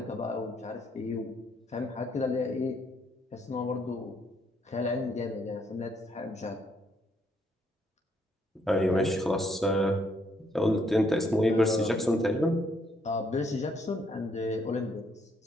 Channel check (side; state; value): both; normal; correlation 0.71